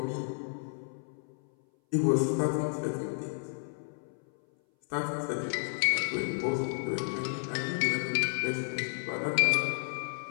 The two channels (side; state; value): right; silent; 57 dB below the other